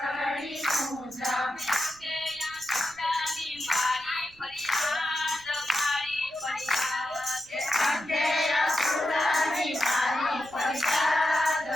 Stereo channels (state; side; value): noise; right; rumble, 26 dB below the sound